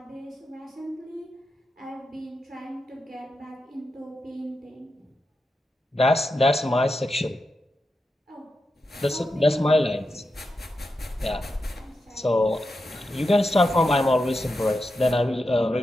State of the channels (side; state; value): both; normal; correlation 0.88